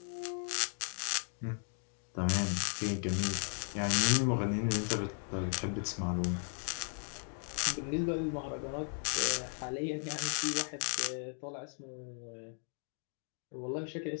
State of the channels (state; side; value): silent; right; 54 dB below the other